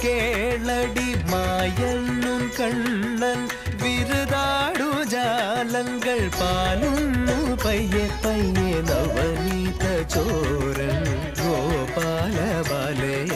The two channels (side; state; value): both; identical; correlation 1.00